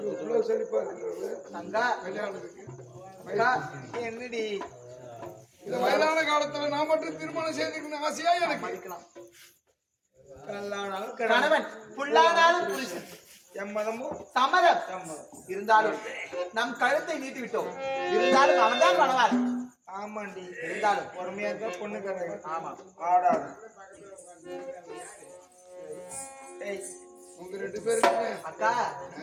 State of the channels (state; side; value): identical; both; correlation 1.00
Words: செழிப்பா இருக்கிறது அக்கா கல்யாணத்துக்கு. அக்கா என்னடி இந்த வயதான காலத்துல நான் மட்டும் திருமணம் செய்துக்கணும் ஆசையா எனக்கு. மதிக்கலாம். கணவன் புல்லானாலும் புருஷன் எம்மதமும் சம்மதம். இருந்தாலும் நம் கழுத்தை நீட்டி விட்டோம். இருந்தாலும் அவன் தான் பண்ணுவார். ஆமாண்டி இருந்தாலும் பொறுமையா இருந்தா பொண்ணு கரை. ஆமா ஆடாது. ஏய் உங்க 2 பேருக்குமே அக்கா